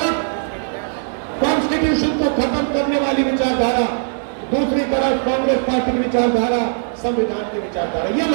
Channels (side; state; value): left; silent; digital silence